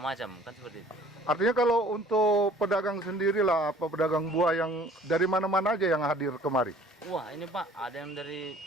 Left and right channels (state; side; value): normal; both; correlation 0.52